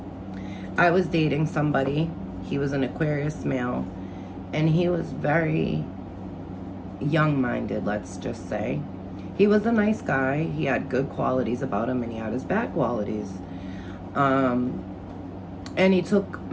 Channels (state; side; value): identical; both; correlation 1.00